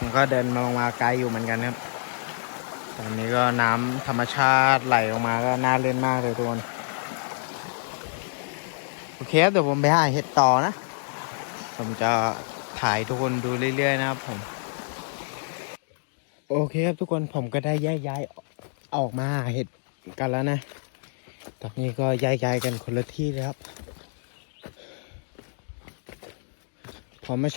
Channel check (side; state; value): right; silent; digital silence